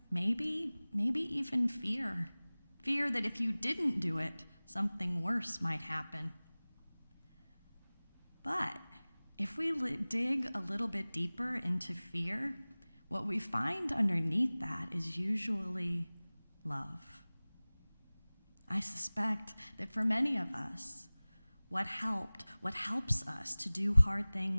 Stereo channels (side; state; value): both; inverted; correlation -1.00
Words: maybe even fear. Fear that if you didn't do it, something worse might happen. But if we dig a little bit deeper into fear, what we find underneath that is usually love. I suspect that for many of us, what helps us to do hard